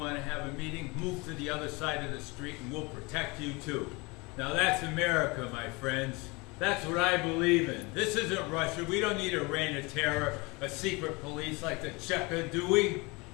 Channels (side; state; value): right; quieter; 26.3 dB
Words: to have a meeting? Move to the other side of the street and we'll protect you too. Now that's America, my friends. That's what I believe in. This isn't Russia. We don't need a reign of terror, a secret police like the Cheka, do we?